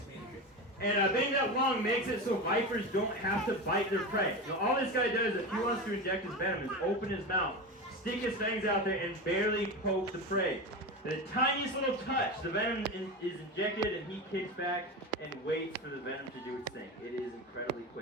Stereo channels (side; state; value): both; normal; correlation 0.22